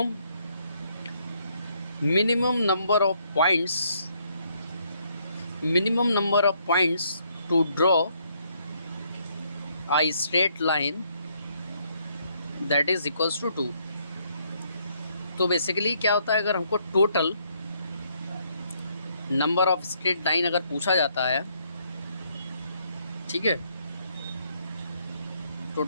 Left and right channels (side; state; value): both; inverted; correlation -0.71